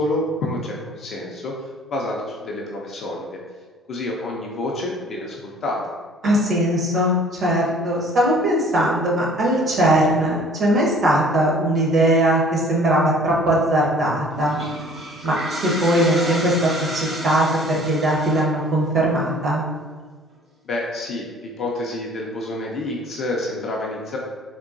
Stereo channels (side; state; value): both; normal; correlation 0.52